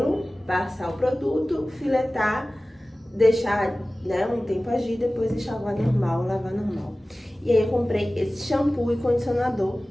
passar o produto, filetar, deixar um tempo agir, depois enxaguar normal, lavar normal. E aí eu comprei esse shampoo e condicionador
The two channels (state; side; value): normal; both; correlation 0.97